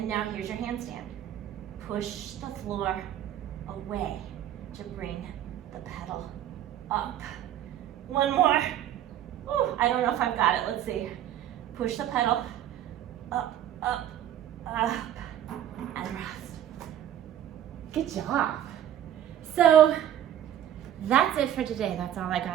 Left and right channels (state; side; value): quieter; left; 11.2 dB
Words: now here's your handstand. Push the floor away to bring the pedal up. One more. Ooh, I don't know if I've got it. Let's see. Push the pedal up, up, up, and rest. Good job. So that's it for today. That's all I